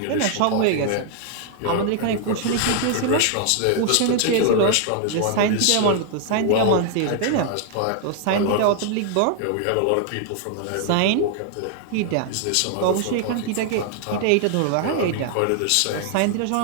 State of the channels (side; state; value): both; different; correlation 0.00